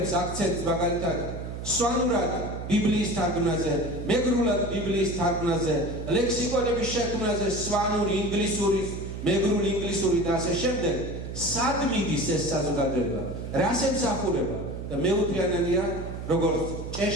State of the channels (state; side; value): noise; right; hum, 8 dB below the sound